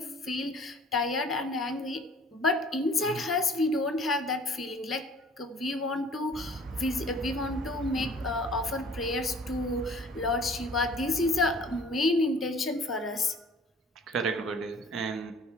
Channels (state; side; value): normal; both; correlation 0.51